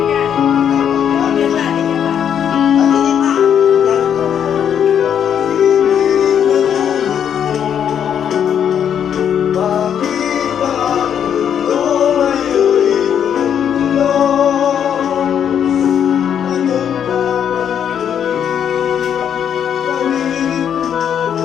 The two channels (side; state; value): right; quieter; 8.7 dB